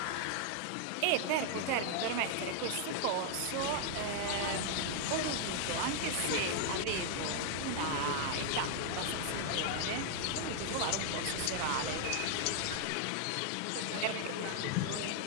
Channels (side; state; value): both; different; correlation 0.00